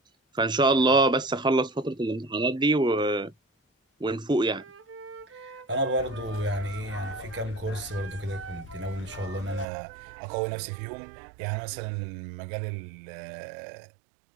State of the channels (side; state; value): left; drops out; at 9.7 s